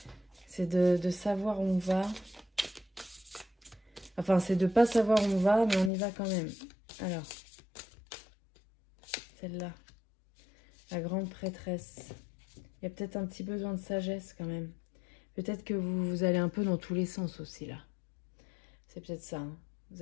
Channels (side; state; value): right; drops out; at 5.9 s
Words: C'est de savoir où on va. Enfin, c'est de pas savoir où on va, mais on y va quand même. Alors, celle-là. La grande prêtresse. Il y a peut-être un petit besoin de sagesse quand même. Peut-être que vous allez un peu dans tous les sens aussi, là. C'est peut-être ça. Hein. Vous